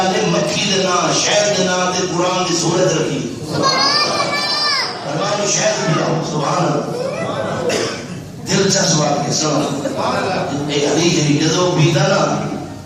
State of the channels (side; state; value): both; identical; correlation 1.00